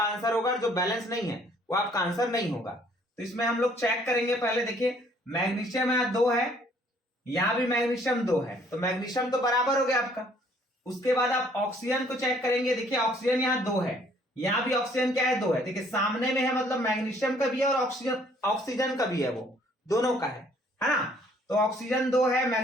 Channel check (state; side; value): normal; both; correlation 0.61